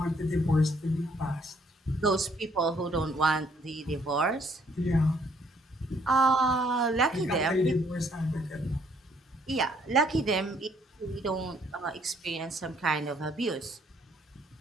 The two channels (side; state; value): both; normal; correlation 0.66